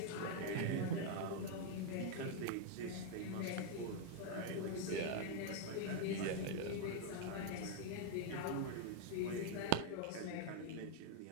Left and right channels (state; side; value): different; both; correlation 0.00